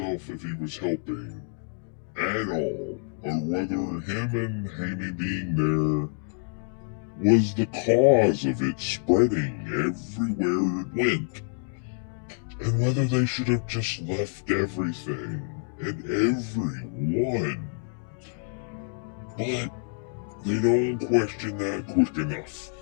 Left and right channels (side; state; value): right; silent; 60 dB below the other